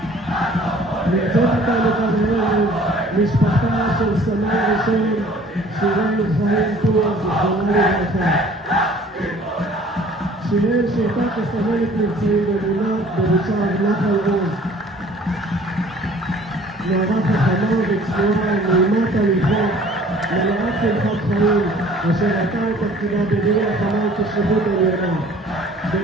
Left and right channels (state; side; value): normal; both; correlation 0.52